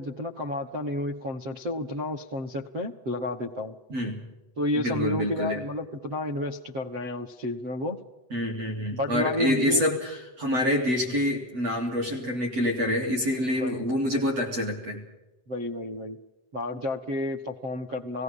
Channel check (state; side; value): late; left; 8.0 ms